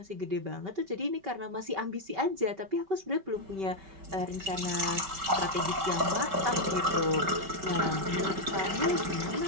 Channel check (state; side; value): late; left; 5.2 ms